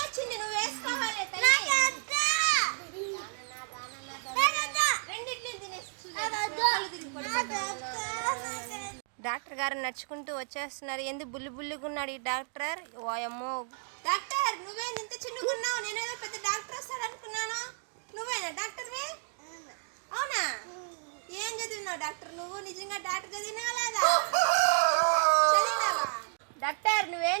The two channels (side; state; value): left; silent; 56 dB below the other